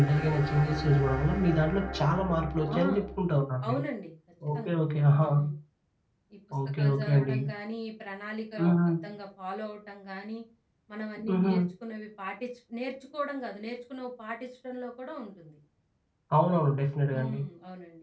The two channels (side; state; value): both; identical; correlation 1.00